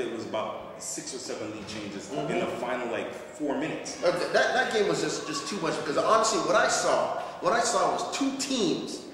was about 6 or 7 lead changes in the final 4 minutes. That game was just too much, because honestly, what I saw was two teams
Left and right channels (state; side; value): identical; both; correlation 1.00